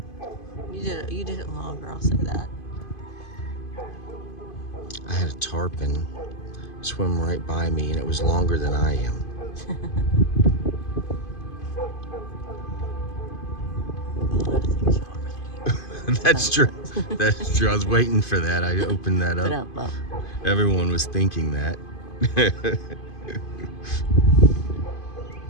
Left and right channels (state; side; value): late; right; 2.5 ms